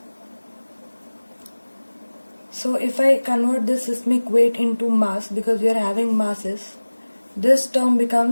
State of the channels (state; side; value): inverted; both; correlation -1.00